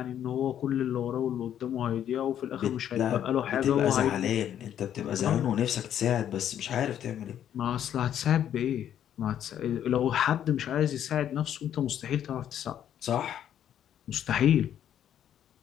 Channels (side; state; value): right; quieter; 10.2 dB